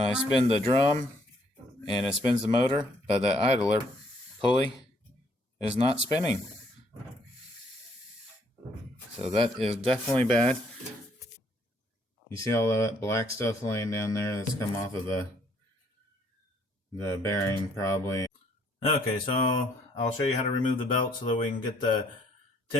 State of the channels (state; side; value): normal; both; correlation 0.66